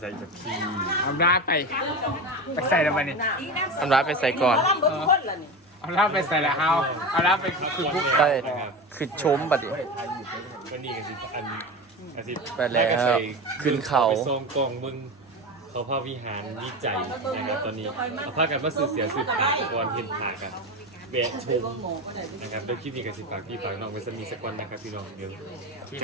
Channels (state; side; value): normal; both; correlation 0.24